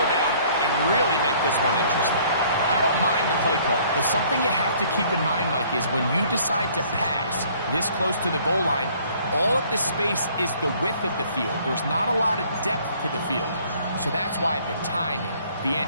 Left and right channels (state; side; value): inverted; both; correlation -0.58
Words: down and really make this one interesting? I don't mind the play call, but something you have to keep in mind, Mike, is when you decide to pass this close to the goal line, all of the space is the width of the field. There's not a lot of depth to the field. So that's why the timing, the